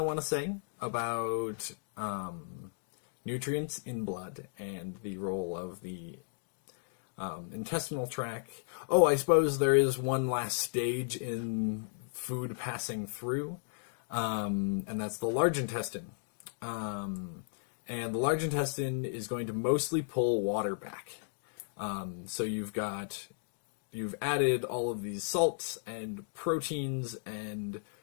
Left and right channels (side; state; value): right; silent; digital silence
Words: to say about nutrients in blood and the role of the intestinal tract. Oh, I suppose there is one last stage in food passing through, and that's the large intestine. And the large intestine is going to mostly pull water back. So you've added all of these salts and proteins and